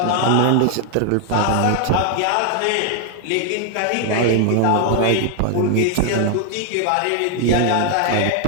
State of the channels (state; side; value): different; both; correlation 0.00